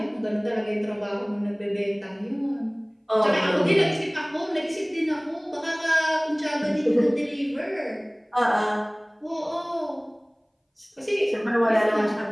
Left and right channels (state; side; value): identical; both; correlation 1.00